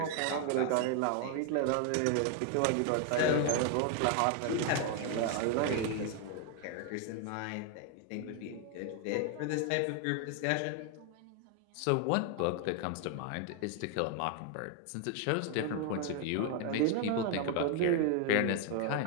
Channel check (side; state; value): both; different; correlation 0.01